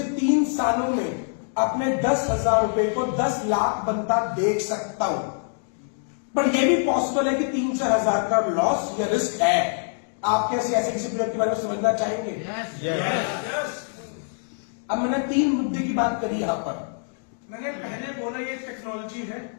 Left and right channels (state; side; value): silent; right; digital silence